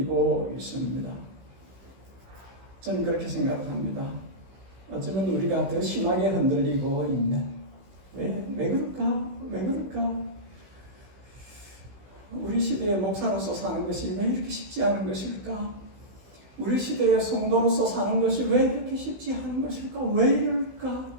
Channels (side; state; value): left; late; 16 ms